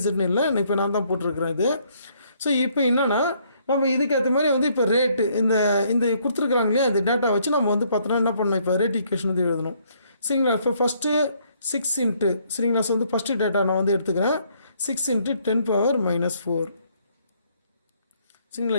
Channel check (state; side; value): inverted; both; correlation -0.67